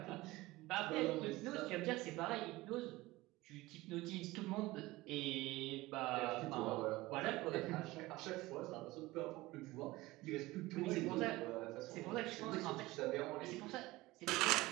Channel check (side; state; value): left; quieter; 19.5 dB